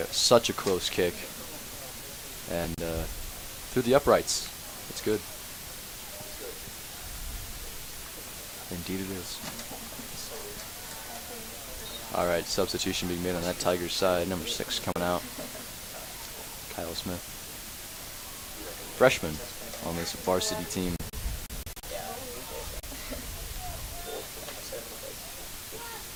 such a close kick. And through the uprights. It's good. Indeed it is. All right, substitution being made on that Tigers side. Number 6 coming out. Kyle Smith. Freshman on this varsity team.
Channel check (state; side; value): identical; both; correlation 1.00